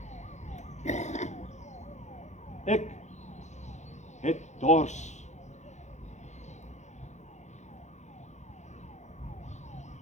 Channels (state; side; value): late; right; 0.34 ms